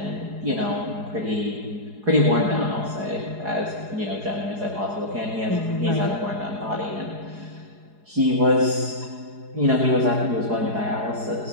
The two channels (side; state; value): left; late; 4.8 ms